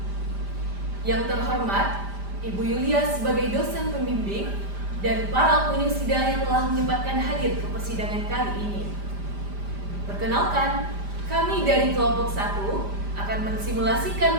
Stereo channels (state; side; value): late; left; 5.0 ms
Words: Yang terhormat, Ibu Yulia sebagai dosen pembimbing dan para pengunjung sidang yang telah menyempatkan hadir ke persidangan kali ini. Perkenalkan, kami dari kelompok 1 akan